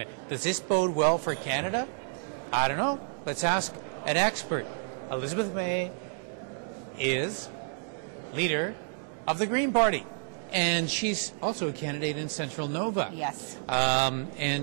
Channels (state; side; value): silent; left; digital silence